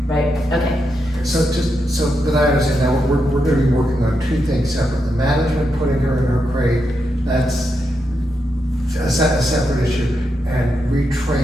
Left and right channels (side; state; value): both; normal; correlation 0.84